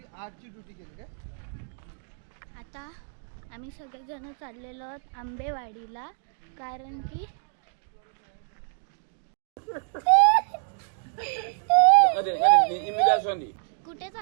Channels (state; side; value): silent; left; digital silence